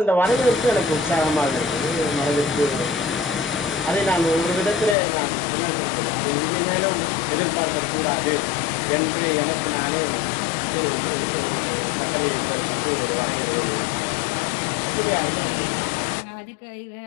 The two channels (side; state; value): right; drops out; at 5.0 s